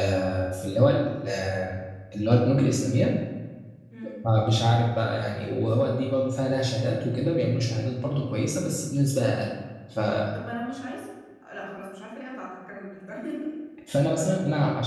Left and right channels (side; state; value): both; identical; correlation 1.00